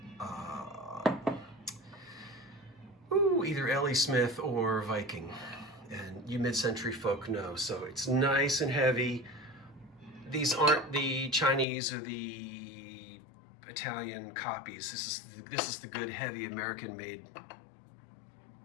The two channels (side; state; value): right; drops out; at 11.7 s